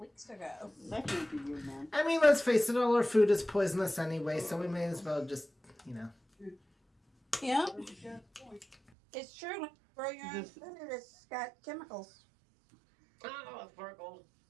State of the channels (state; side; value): drops out; left; at 8.8 s